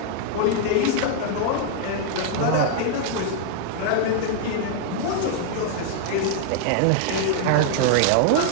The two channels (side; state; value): both; different; correlation 0.00